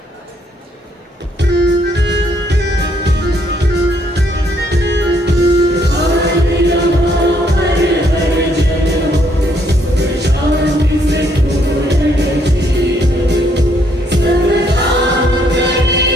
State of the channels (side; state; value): both; normal; correlation 0.70